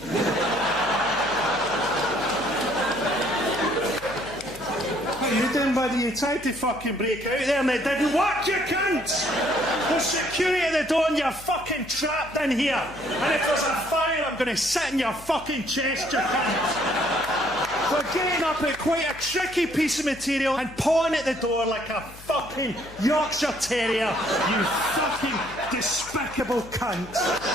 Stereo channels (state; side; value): noise; left; hum, 19 dB below the sound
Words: What are you doing, buddy? You tried to fucking break out there and it didn't work, you cunt! There's security at the door and you're fucking trapped in here. And if there's a fire, I'm going to sit in your fucking chest, you cunt! We're getting up at quite a tricky piece of material and pawing at the door like a fucking Yorkshire Terrier, you fucking despicable cunt!